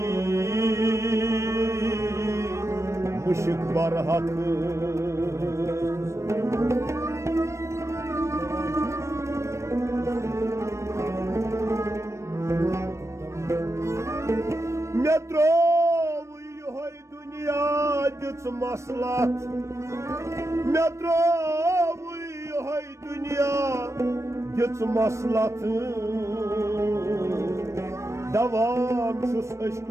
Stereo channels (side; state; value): left; late; 0.14 ms